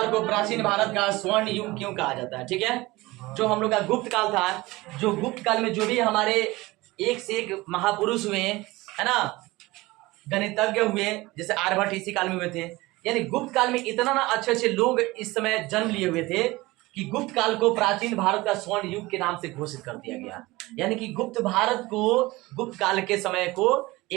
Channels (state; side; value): quieter; left; 20.5 dB